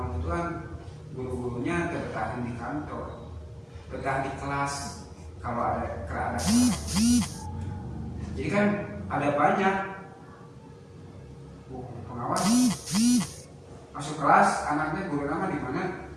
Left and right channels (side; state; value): both; identical; correlation 1.00